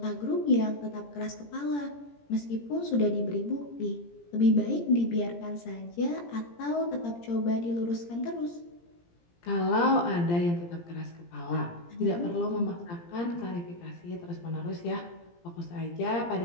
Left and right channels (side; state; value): right; late; 17 ms